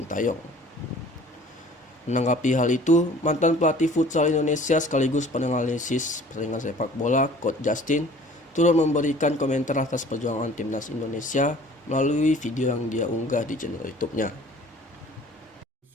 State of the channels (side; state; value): both; normal; correlation 0.49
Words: Menanggapi hal itu, mantan pelatih futsal Indonesia sekaligus penganalisis pertandingan sepak bola, Coach Justin, turut memberikan komentar atas perjuangan timnas Indonesia melalui video yang dia unggah di channel YouTube-nya.